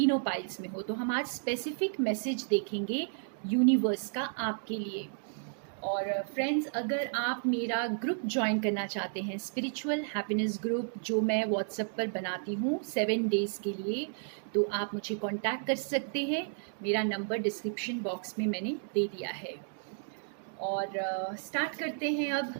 पाइल्स में हो। तो हम आज स्पेसिफिक मैसेज देखेंगे यूनिवर्स का आपके लिए। और फ्रेंड्स, अगर आप मेरा ग्रुप ज्वाइन करना चाहते हैं, स्पिरिचुअल हैप्पीनेस ग्रुप, जो मैं व्हाट्सएप पर बनाती हूँ 7 डेज़ के लिए, तो आप मुझे कांटेक्ट कर सकते हैं। मेरा नंबर डिस्क्रिप्शन बॉक्स में मैंने दे दिया है। और स्टार्ट करते हैं अब।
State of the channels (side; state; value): left; silent; digital silence